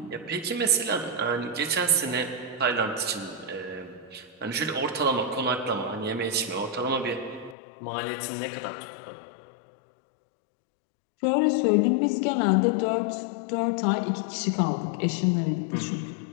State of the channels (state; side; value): drops out; right; at 7.6 s